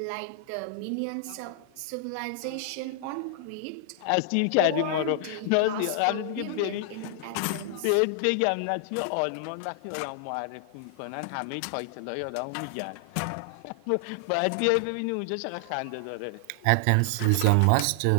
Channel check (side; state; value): both; different; correlation 0.00